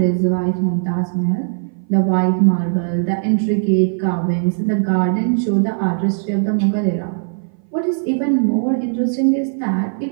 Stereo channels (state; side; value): silent; left; 59 dB below the other